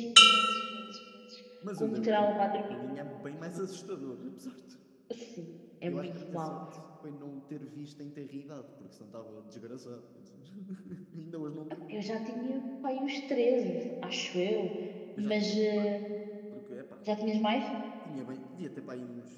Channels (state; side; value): identical; both; correlation 1.00